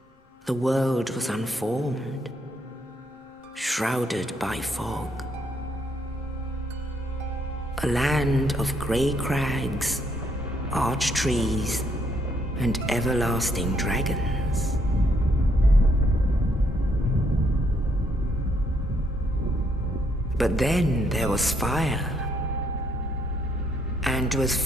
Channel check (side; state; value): both; normal; correlation 0.72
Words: the world was unformed, shrouded by fog. A land of grey crags, arch trees, and everlasting dragons. But then there was fire, and with